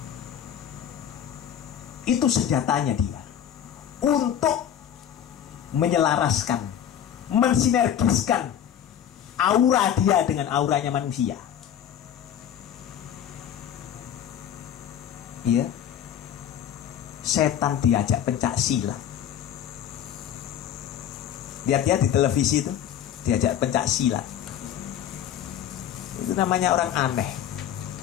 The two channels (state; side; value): quieter; right; 9.8 dB